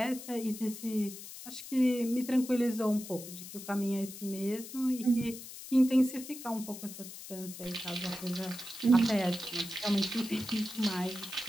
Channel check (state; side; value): noise; left; hiss, 12 dB below the sound